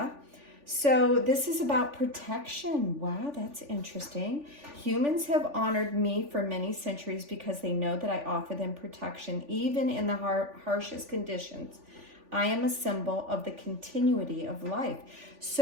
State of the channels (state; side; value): late; left; 3.4 ms